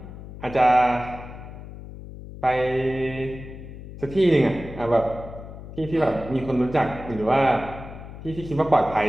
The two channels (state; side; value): noise; left; hum, 13 dB below the sound